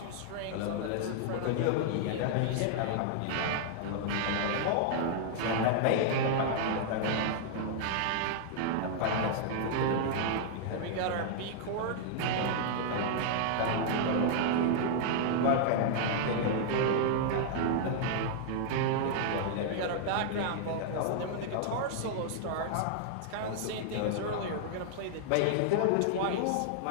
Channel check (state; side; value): different; both; correlation -0.01